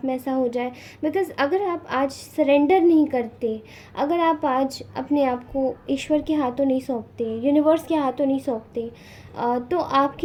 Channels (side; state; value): both; identical; correlation 1.00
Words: में ऐसा हो जाए। बिकॉज़ अगर आप आज सरेंडर नहीं करते, अगर आप आज अपने आप को ईश्वर के हाथों नहीं सौंपते, यूनिवर्स के हाथों नहीं सौंपते, तो